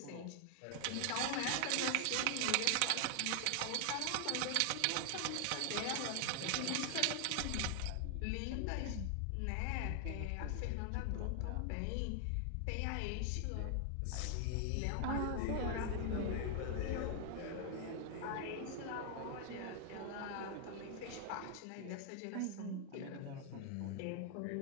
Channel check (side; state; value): both; different; correlation 0.00